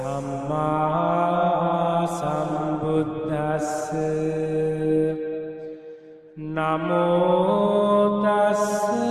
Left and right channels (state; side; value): identical; both; correlation 1.00